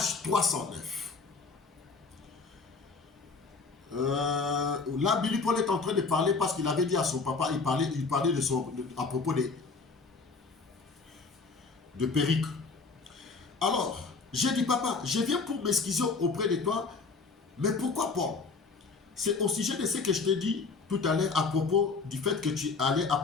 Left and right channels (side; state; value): right; quieter; 4.4 dB